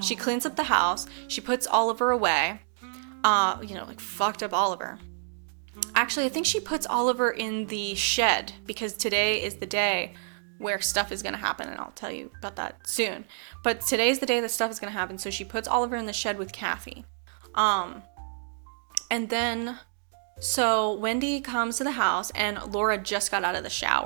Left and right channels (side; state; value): left; silent; digital silence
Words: She cleans up the house. She puts Oliver away. Like fucked up Oliver. Actually, I think she puts Oliver in the shed because today is the day where stuff is going to happen, and I'll tell you about that soon. But today's the day that stuff is going to happen, so she puts Oliver in the shed with Kathy. And then, so Wendy comes to the house, and Laura just got out of the